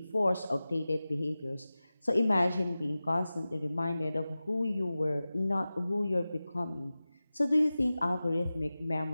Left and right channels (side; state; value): both; inverted; correlation -0.96